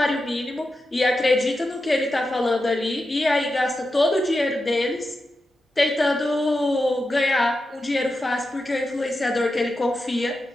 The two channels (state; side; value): normal; both; correlation 0.89